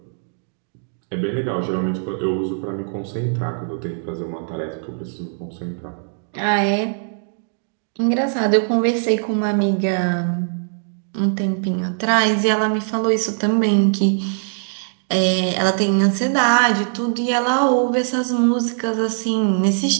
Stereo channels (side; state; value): left; silent; 65 dB below the other